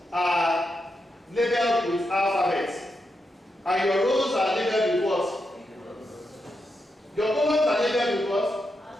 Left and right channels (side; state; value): both; normal; correlation 0.85